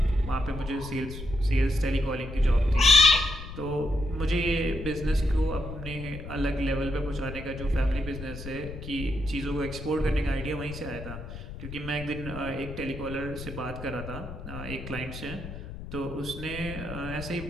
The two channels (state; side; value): noise; left; rumble, 10 dB below the sound